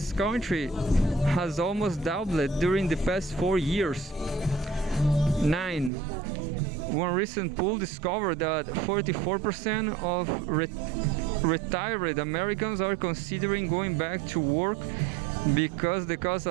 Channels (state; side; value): drops out; left; at 5.9 s